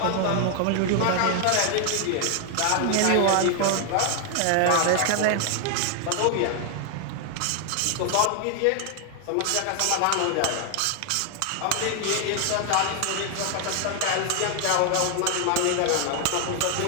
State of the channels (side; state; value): both; different; correlation 0.00